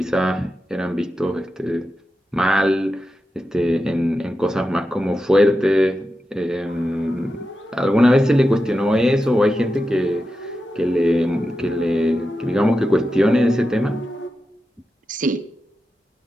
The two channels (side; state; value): both; normal; correlation 0.90